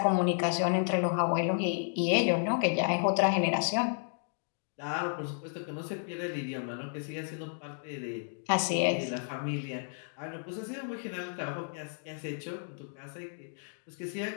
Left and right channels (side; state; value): right; silent; digital silence